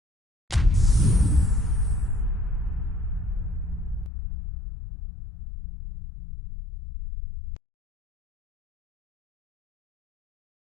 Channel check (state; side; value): drops out; right; at 4.1 s